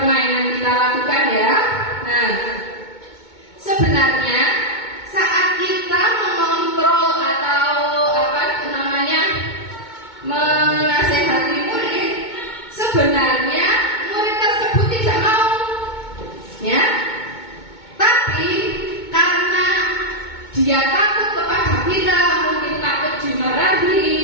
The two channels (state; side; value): late; right; 2.2 ms